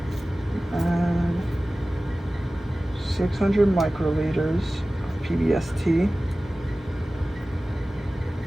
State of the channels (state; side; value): normal; both; correlation 0.97